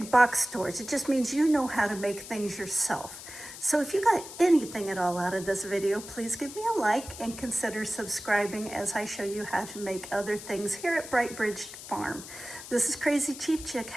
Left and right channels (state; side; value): noise; left; hiss, 13 dB below the sound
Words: box stores. It just means you know how to make things yourself. So if you got anything at all out of this video, please give me a like and consider subscribing as I show you how to make other things here at Bright Bridge Farm. This is Crazy Cheap Chick.